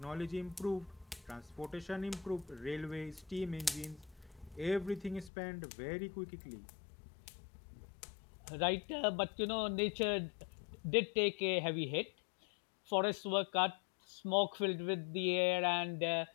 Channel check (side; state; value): right; drops out; at 5.3 s